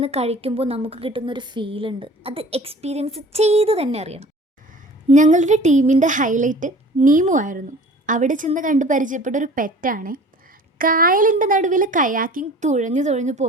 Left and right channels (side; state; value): both; normal; correlation 0.45